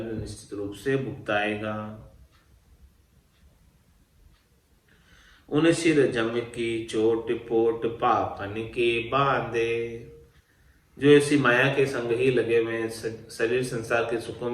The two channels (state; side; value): identical; both; correlation 1.00